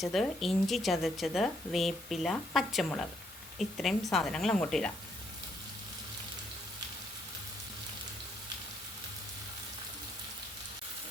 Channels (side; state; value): both; normal; correlation 0.72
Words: ഇഞ്ചി ചതച്ചത്, വേപ്പില, പച്ചമുളക്, ഇത്രയും സാധനങ്ങൾ അങ്ങോട്ട് ഇടാം.